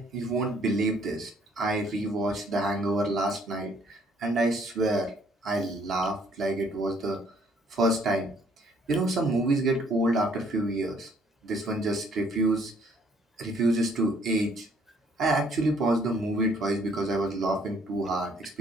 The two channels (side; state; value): both; normal; correlation 0.64